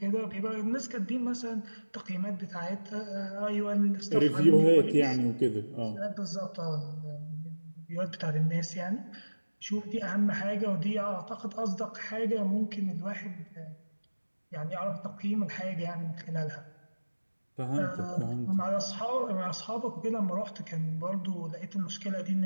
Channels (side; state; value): both; inverted; correlation -1.00